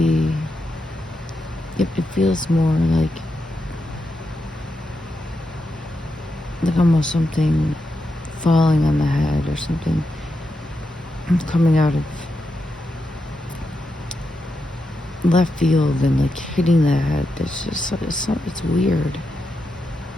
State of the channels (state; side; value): normal; both; correlation 0.86